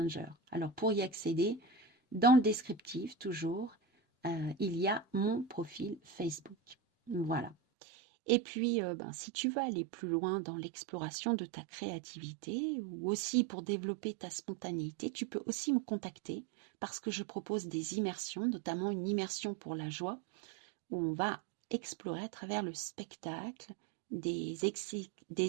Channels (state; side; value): drops out; left; at 7.6 s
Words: Alors, pour y accéder, dans le descriptif, toujours, il y a mon profil Facebook. Voilà. Et puis, si tu veux aller plus loin dans l'exploration de ta créativité ou aussi pour développer ta spontanéité, tu peux aussi me contacter parce que je propose des immersions, notamment une immersion pour la joie, où on va explorer à travers le spectacle des